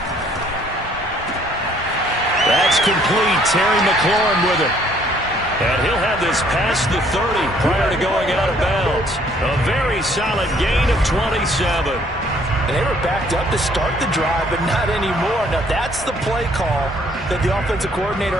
That's complete. Terry McLaurin with it. And he'll have this past the 30 prior to going out of bounds. A very solid gain of 27. And they were backed up to start the drive, but not anymore. Now that's the play call that the offensive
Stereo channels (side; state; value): both; normal; correlation 0.62